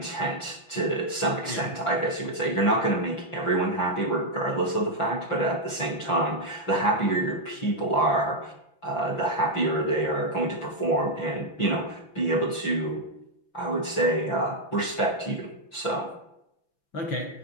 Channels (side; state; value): right; late; 5.9 ms